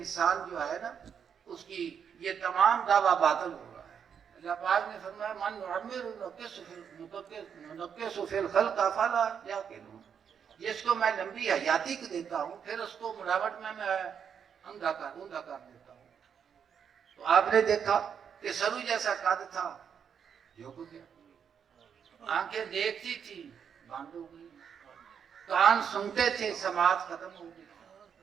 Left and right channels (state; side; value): quieter; left; 7.5 dB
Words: جو ہے نا اس کی یہ تمام دعویٰ باطل ہو رہا ہے۔ اللہ پاک نے فرمایا من نعمر ننکس فی الخلق افلا یعقلون، جس کو میں لمبی حیاتی کو دیتا ہوں پھر اس کو ملاوٹ میں اوندا کر دیتا ہوں۔ تو آپ نے دیکھا کہ سرو جیسا قد تھا، جو کو گیا، آنکھیں دیکھتی تھی بند ہو گئی، کان سنتے تھے سماعت ختم ہو گئی۔